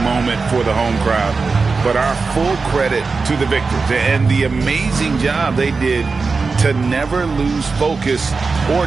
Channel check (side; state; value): left; quieter; 4.4 dB